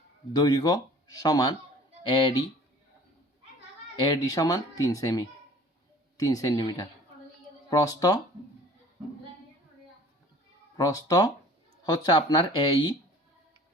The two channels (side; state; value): both; normal; correlation 0.48